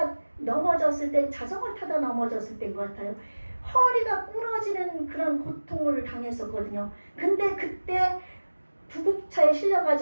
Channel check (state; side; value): inverted; both; correlation -1.00